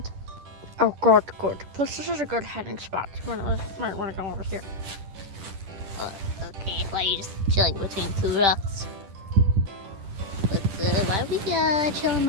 Oh, good, good. Plus, this is a good heading spot. You might want to go over here. Okay, why are you just chilling between two rocks? But why are we chilling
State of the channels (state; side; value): late; left; 10 ms